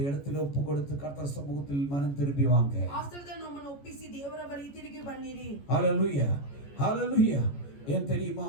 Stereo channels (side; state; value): right; late; 14 ms